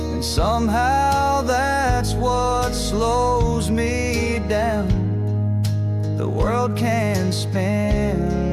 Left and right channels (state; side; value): identical; both; correlation 1.00